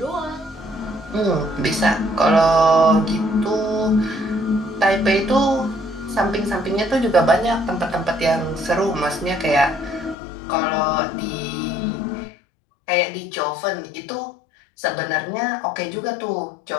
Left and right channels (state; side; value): drops out; right; at 10.2 s